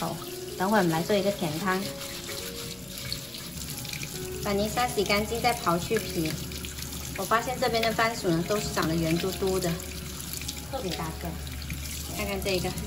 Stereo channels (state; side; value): noise; left; rumble, 24 dB below the sound